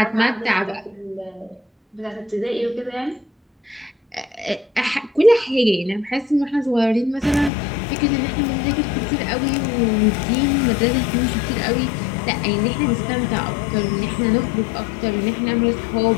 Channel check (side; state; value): right; drops out; at 7.5 s